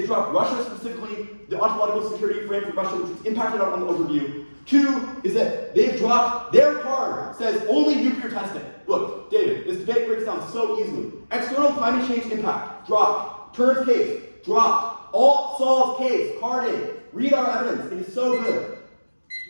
dropped Russia specifically, the ontological security frame for Russia, which was impacted on the overview. Two is that they've dropped their card, says only nuclear testing. Look, David, this debate breaks down so easily. External climate change impact, dropped. Turns case, dropped. Alt solves case, carded. Read our evidence, it is so good.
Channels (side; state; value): both; inverted; correlation -1.00